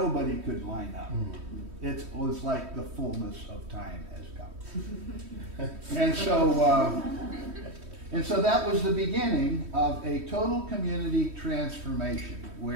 could line up. It was like the fullness of time has come. And so that was the beginning of a total community transformation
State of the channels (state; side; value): late; left; 3.1 ms